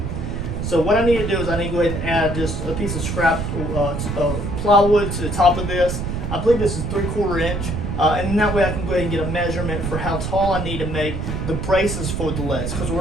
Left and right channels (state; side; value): noise; right; rumble, 3 dB below the sound